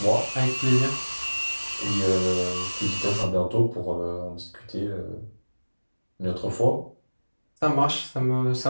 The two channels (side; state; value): both; inverted; correlation -1.00